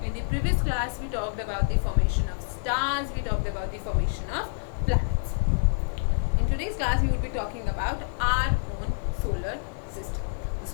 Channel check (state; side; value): silent; right; digital silence